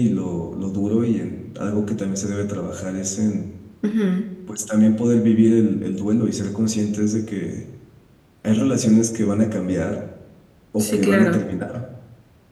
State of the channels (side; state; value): both; identical; correlation 1.00